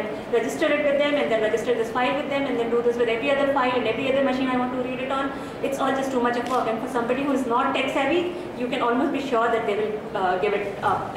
register it with them, and then register this file with them, and then do this with every other file and every other machine I want to read it on. It's all just too much of work, and for somebody who is not tech savvy, you can almost be sure that they will give it up.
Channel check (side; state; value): both; identical; correlation 1.00